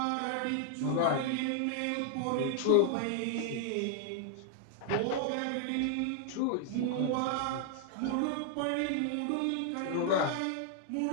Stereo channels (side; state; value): both; different; correlation 0.00